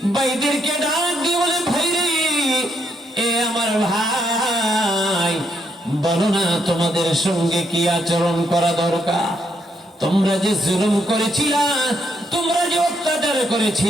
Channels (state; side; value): normal; both; correlation 0.76